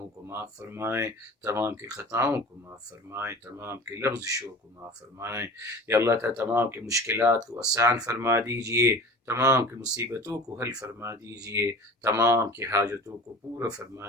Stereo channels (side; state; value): both; normal; correlation 0.39